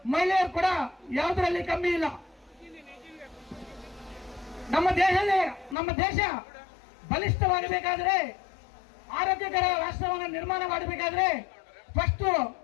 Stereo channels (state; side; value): drops out; right; at 5.8 s